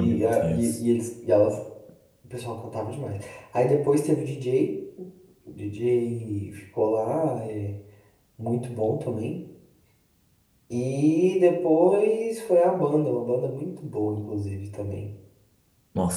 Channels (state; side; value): identical; both; correlation 1.00